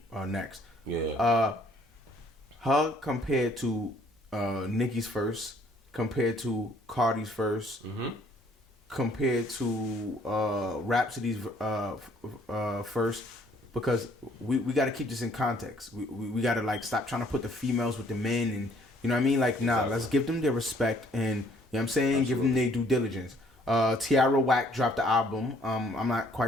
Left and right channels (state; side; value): normal; both; correlation 0.62